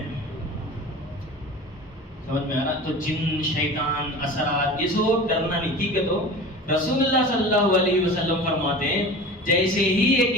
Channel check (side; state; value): both; normal; correlation 0.36